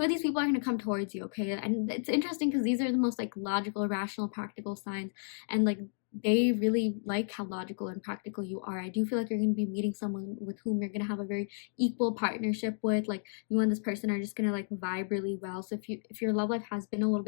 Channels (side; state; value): right; silent; digital silence